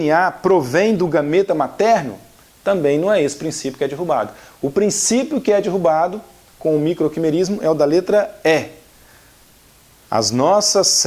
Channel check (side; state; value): both; identical; correlation 1.00